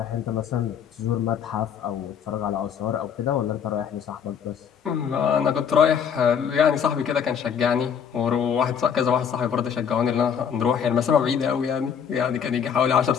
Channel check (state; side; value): quieter; right; 7.6 dB